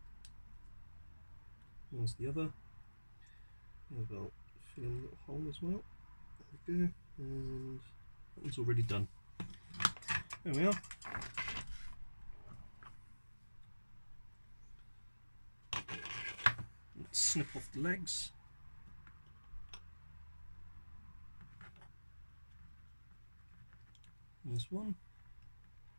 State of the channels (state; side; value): inverted; both; correlation -1.00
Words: There's the other. Maybe I'll fill in a little hole as well. There we go, and that one's already done. There we are. Let's snip off the legs. There's one.